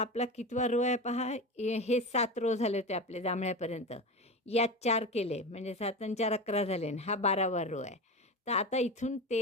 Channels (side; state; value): both; normal; correlation 0.25